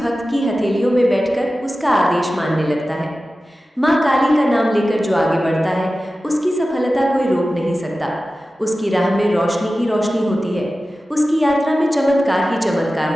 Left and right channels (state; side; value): normal; both; correlation 0.95